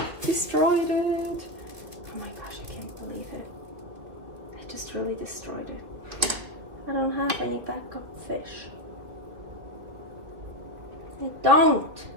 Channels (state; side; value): late; left; 2.8 ms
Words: destroyed it. Oh my gosh, I can't believe it. I just really destroyed it. I don't have any backup fish. I don't.